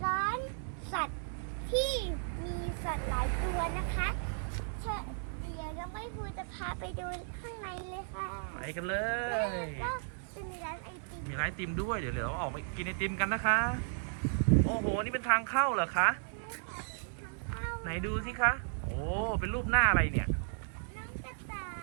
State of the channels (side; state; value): left; silent; 55 dB below the other